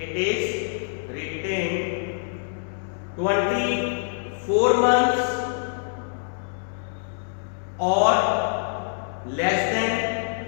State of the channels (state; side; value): silent; right; 62 dB below the other